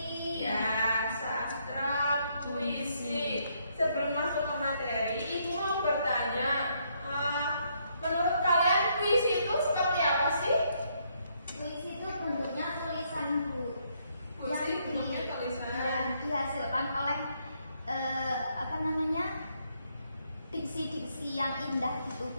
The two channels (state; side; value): inverted; both; correlation -0.73